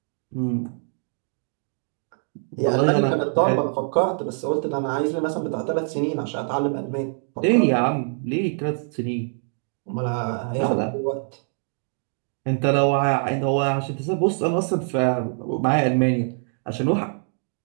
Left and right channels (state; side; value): silent; left; 62 dB below the other